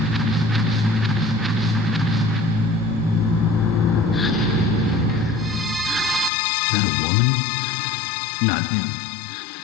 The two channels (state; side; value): drops out; right; at 6.3 s